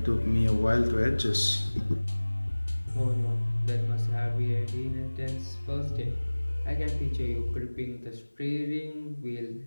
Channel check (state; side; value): inverted; both; correlation -1.00